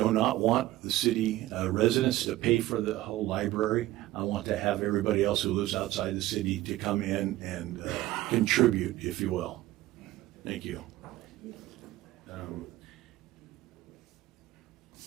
not want the city residents to pay for the whole library. I want to have everybody else who lives outside the city to come in and contribute, if you will. Thank you.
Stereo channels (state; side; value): quieter; left; 16.2 dB